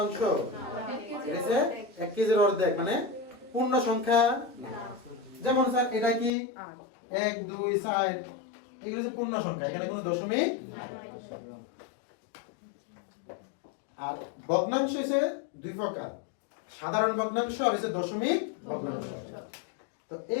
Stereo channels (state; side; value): drops out; right; at 6.3 s